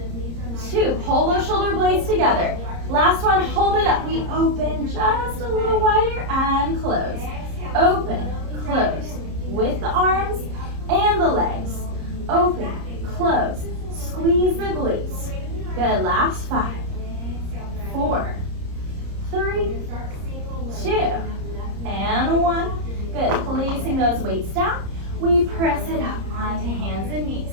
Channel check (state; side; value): late; left; 30 ms